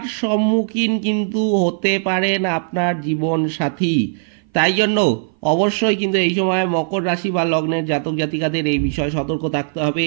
সম্মুখীন কিন্তু হতে পারেন আপনার জীবন সাথী। তাই জন্য অবশ্যই কিন্তু এই সময় মকর রাশি বা লগ্নের জাতক জাতিকাদের এই বিষয়ে সতর্ক থাকতে হবে।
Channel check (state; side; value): silent; left; 58 dB below the other